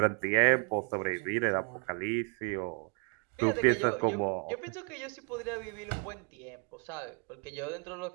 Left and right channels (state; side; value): quieter; left; 37.3 dB